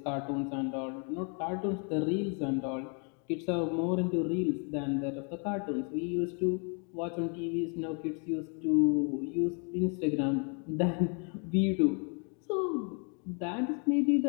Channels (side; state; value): right; quieter; 39.1 dB